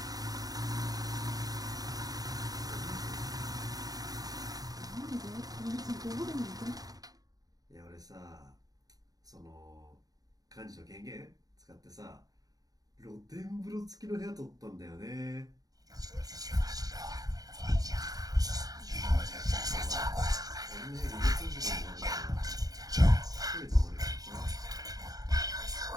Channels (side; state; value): left; late; 0.18 ms